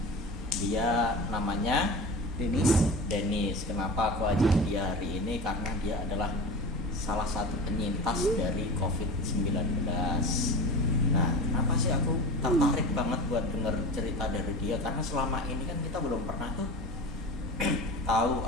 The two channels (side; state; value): both; normal; correlation 0.31